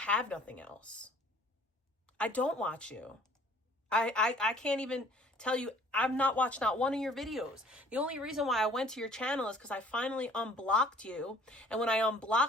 nothing else. I don't watch you. I can't even tell you, I've not watched not one of your videos. The only reason why I went to your channel is because I finally unblocked you. And when I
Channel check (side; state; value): both; normal; correlation 0.54